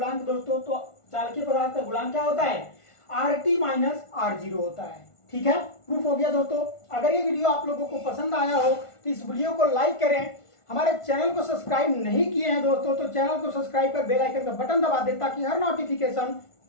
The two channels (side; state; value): right; late; 1.5 ms